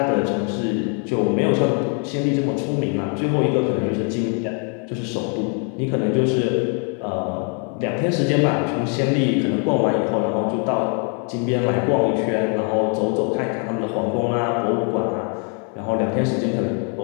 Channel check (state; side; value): quieter; right; 37.0 dB